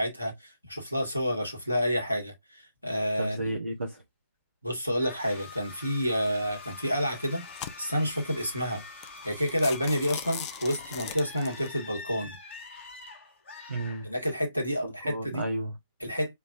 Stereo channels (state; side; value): inverted; both; correlation -0.83